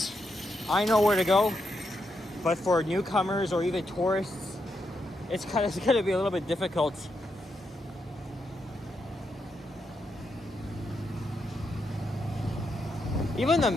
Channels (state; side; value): normal; both; correlation 0.82